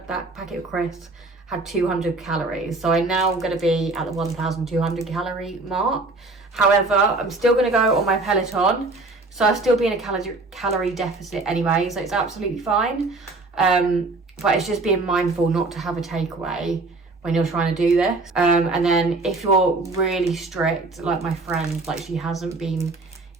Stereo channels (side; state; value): left; quieter; 3.3 dB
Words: packet of crisps had 200 calories. So I'm now going to be at the 1,200 calorie mark. However, I'm still going to go on my Peloton. So I'll still be in a calorie deficit anyway. So it's absolutely fine. But it's just being mindful not to have a takeaway when you're trying to do this. And then if you're really strict, like my friend, like she hasn't been